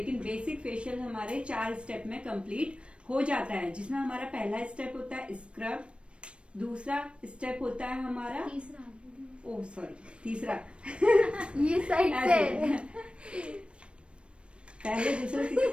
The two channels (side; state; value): left; late; 0.059 ms